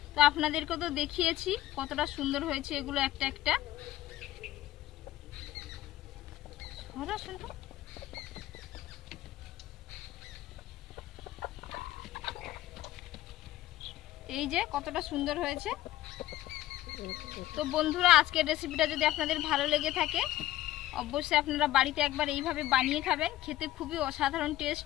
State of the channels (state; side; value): quieter; right; 15.0 dB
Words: তো আপনাদেরকে তো দেখিয়েছি কতটা সুন্দর হয়েছে এগুলো একটা একটা। এই যে কতটা সুন্দর হয়েছে। তো বন্ধুরা আজকের রেসিপিটা যদি আপনাদের ভালো লেগে থাকে অবশ্যই আপনারা বাড়িতে একবার এইভাবে বানিয়ে খাবেন। খেতে খুবই অসাধারণ